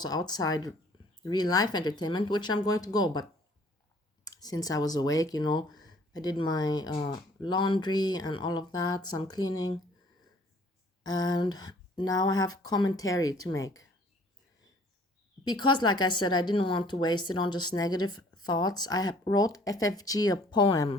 outside real life entertainment, which I'm going to go, but since I was awake, I did my laundry and all of that, some cleaning, and now I have commentary to make. Because, like I said, I didn't want to waste it on just negative thoughts. Wrote FFG a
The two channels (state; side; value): normal; both; correlation 0.57